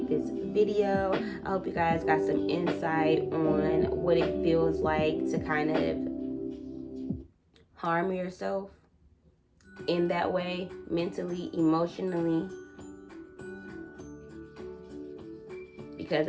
this video. I hope you guys got some insight on what it feels like to kind of harm yourself in that way, mentally, emotionally. because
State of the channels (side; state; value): both; identical; correlation 1.00